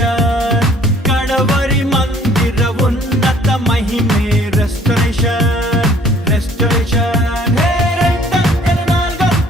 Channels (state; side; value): normal; both; correlation 0.57